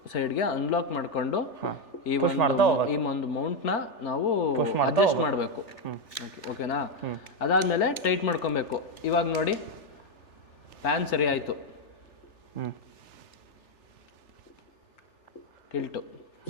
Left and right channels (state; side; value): late; right; 3.4 ms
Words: ಸೈಡ್ಗೆ ಅನ್ಲಾಕ್ ಮಾಡಿಕೊಂಡು ಈ ಒಂದು ಮೌಂಟ್ನ ನಾವು ಅಡ್ಜಸ್ಟ್ ಮಾಡಬೇಕು. ಓಕೆನಾ? ಅದಾದಮೇಲೆ ಟೈಟ್ ಮಾಡ್ಕೊಬೇಕು. ಇವಾಗ ನೋಡಿ ಪ್ಯಾನ್ ಸರಿ ಆಯಿತು, ಟಿಲ್ಟು